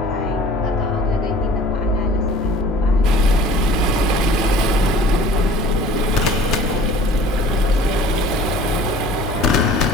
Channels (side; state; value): both; normal; correlation 0.47